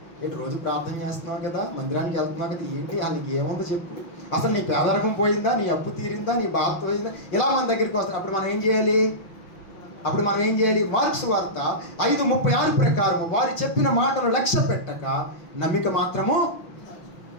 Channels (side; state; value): right; late; 5.9 ms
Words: ఏంటి రోజు ప్రార్థన చేస్తున్నావు కదా, మందిరానికి వెళ్తున్నావు కదా, ఏంటి వాళ్ళకి ఏముందో చెప్పు, అసలు నీ పేదరికం పోయిందా, నీ అప్పు తీరిందా, నీ బాధ పోయిందా, ఇలా మన దగ్గరికి వస్తాడు. అప్పుడు మనం ఏం చేయాలి? మార్కు సువార్త 5:36 ప్రకారం వారు చెప్పిన మాటలు లక్ష్య పెట్టక నమ్మిక మాత్రము